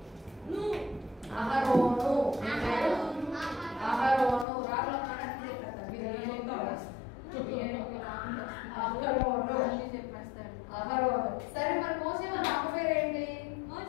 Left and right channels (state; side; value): drops out; right; at 4.5 s